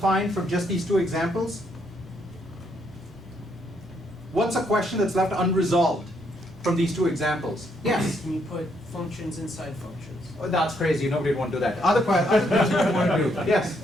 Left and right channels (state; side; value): normal; both; correlation 0.73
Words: from just these 2 examples? What's a question that's left unresolved from these 2 examples? Yes? Can you put functions inside functions? Oh, that's crazy. Nobody would want to do that. Other questions you want to do? Yes?